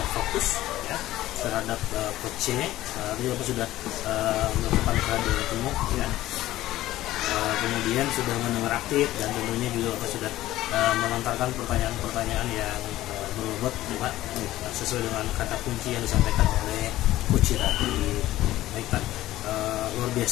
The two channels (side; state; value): right; quieter; 15.4 dB